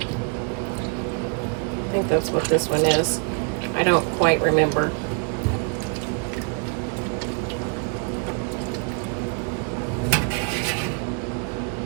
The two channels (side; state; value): left; quieter; 35.1 dB